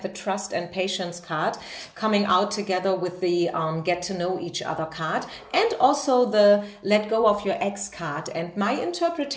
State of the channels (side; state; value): both; identical; correlation 1.00